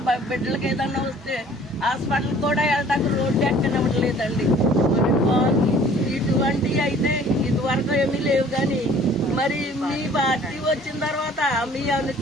బిడ్డలకి ఏదన్నా వస్తే హాస్పిటల్ కూడా వెళ్ళడానికి రోడ్డు ఎక్కనివ్వట్లేదండి. మరి ఇటువంటివి అయితే ఇదివరకు ఏమీ లేవు. కానీ మరి మీ పార్టీ వచ్చిన తర్వాత మీ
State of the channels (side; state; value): both; normal; correlation 0.53